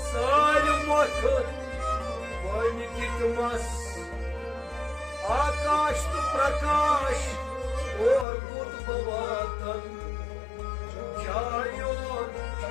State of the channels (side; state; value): right; drops out; at 8.2 s